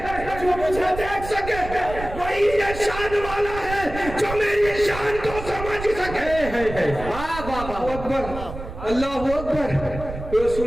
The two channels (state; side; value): noise; right; rumble, 10 dB below the sound